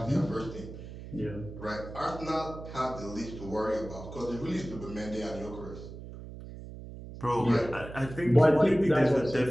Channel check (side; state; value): right; noise; hum, 12 dB below the sound